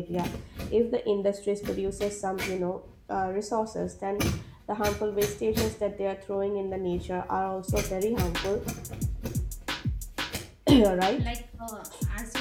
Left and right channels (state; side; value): identical; both; correlation 1.00